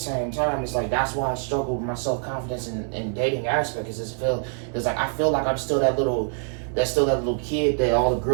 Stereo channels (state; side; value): silent; left; 56 dB below the other